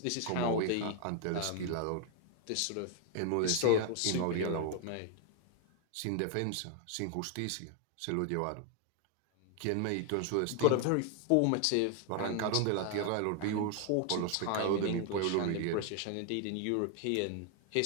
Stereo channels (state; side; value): different; both; correlation 0.00